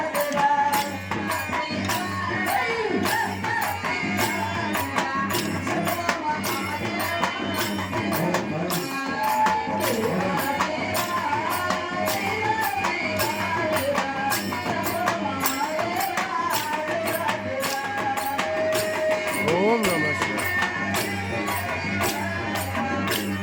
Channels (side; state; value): both; identical; correlation 1.00